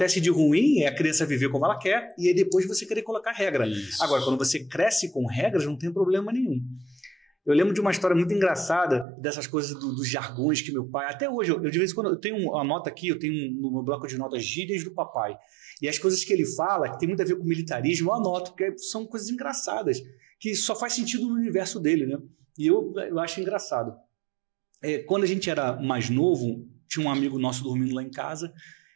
de ruim é a criança viver como ela quer e aí depois você querer colocar regra. Isso. Agora, quando você cresce com regras, não tem problema nenhum. Eu lembro de uma história muito engraçada dessas coisas dos jargões que meu pai... Até hoje, eu de vez em quando, eu tenho uma nota aqui, eu tenho no meu bloco de notas gírias do papai. E as coisas que ele fala, que tem muito a ver com militarismo, eu anoto, porque são coisas engraçadas, que só faz sentido no universo dele, né? E eu acho engraçado. Quando a gente era mais novo, tinha um amigo nosso dormindo lá em casa,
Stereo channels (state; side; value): drops out; left; at 9.1 s